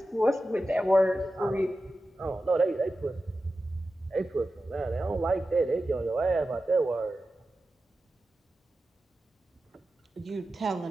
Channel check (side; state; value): both; normal; correlation 0.93